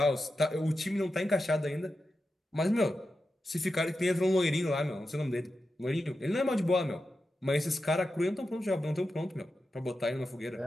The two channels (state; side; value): normal; both; correlation 0.90